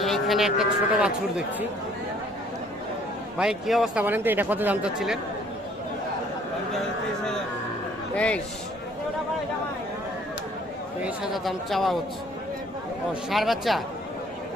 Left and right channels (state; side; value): normal; both; correlation 0.59